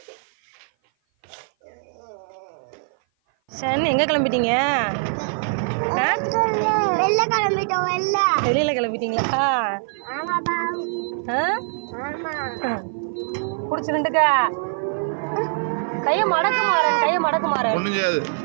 சரி, எங்கே கிளம்பிட்டீங்க? வெளியில் கிளம்பிட்டீங்களா? பிடிச்சிருந்துக்கா. கையை மடக்கு மாறேன், கையை மடக்கு மாறேன்.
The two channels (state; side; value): silent; left; 56 dB below the other